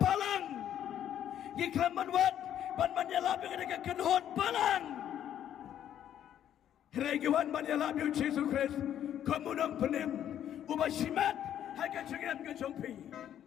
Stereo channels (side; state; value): right; quieter; 10.5 dB